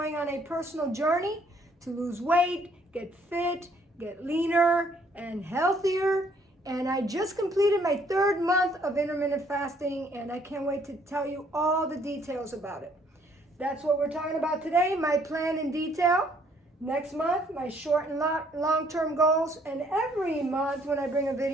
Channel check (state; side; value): normal; both; correlation 0.64